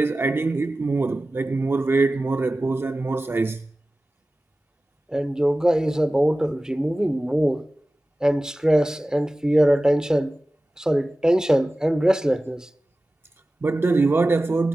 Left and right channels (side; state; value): both; normal; correlation 0.96